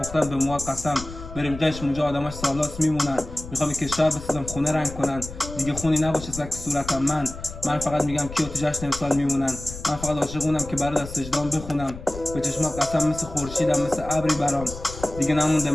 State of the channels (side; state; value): left; noise; rumble, 12 dB below the sound